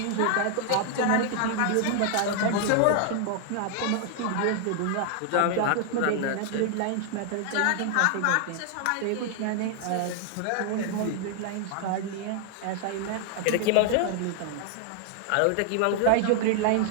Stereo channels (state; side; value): different; both; correlation 0.00